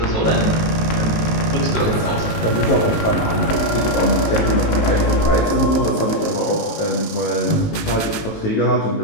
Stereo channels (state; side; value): late; right; 19 ms